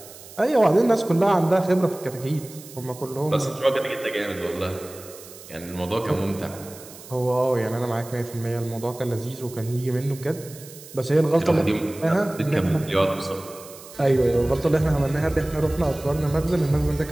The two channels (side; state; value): right; noise; hiss, 18 dB below the sound